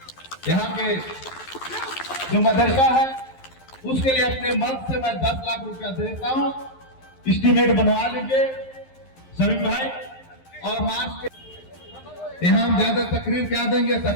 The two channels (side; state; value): right; late; 11 ms